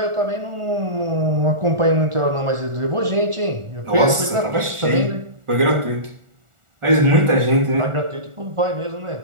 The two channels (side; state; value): left; late; 1.4 ms